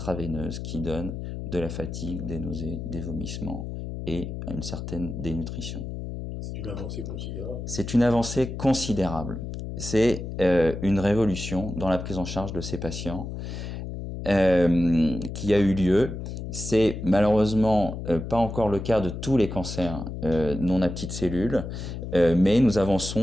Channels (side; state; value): left; noise; hum, 7 dB below the sound